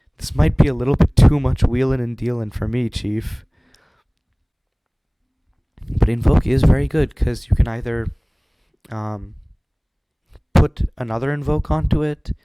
This might be a little bit too much wheelin' and dealin' for me, Chief. But Invoke is very good, because you can either put another Invoke onto it.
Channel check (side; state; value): both; identical; correlation 1.00